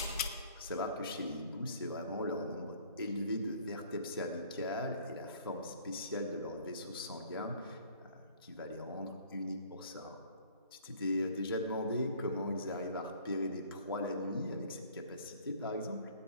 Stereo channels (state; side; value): inverted; both; correlation -0.54